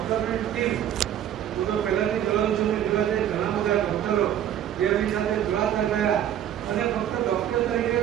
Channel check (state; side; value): quieter; left; 10.6 dB